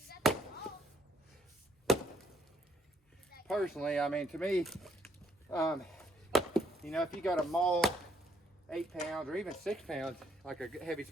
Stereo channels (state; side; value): normal; both; correlation 0.70